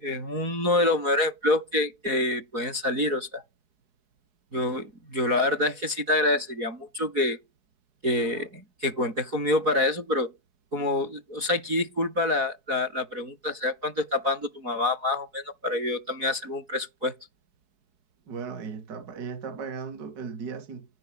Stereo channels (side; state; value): left; late; 4.7 ms